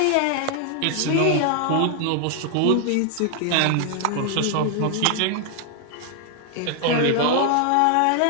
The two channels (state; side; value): different; both; correlation 0.00